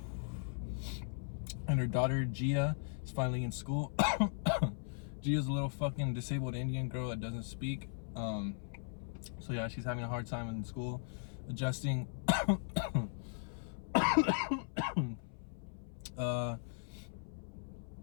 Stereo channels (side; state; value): right; silent; 52 dB below the other